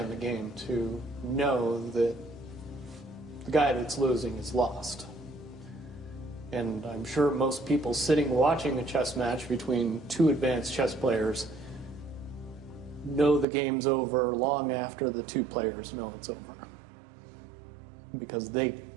the game to know that the guy that's losing is lost. And I'm sure most people sitting watching a chess match between two advanced chess players know the game's over long after the two players know it's over, because they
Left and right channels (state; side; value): drops out; left; at 13.5 s